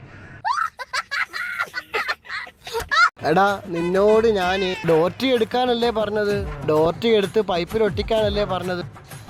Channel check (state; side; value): identical; both; correlation 1.00